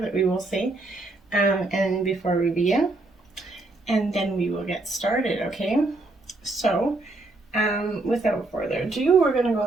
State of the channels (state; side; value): quieter; left; 3.0 dB